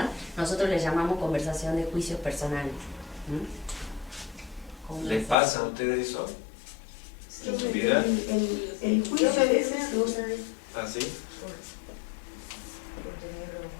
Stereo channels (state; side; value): drops out; right; at 5.4 s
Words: nosotros les llamamos conversación de juicios personales. ¿Les pasa a ustedes eso? ¿En su vida? El juicio a veces... ¿Ah, sí? Por tener